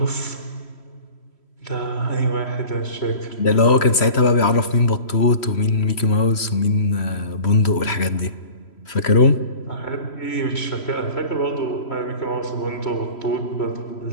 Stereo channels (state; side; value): late; right; 3.0 ms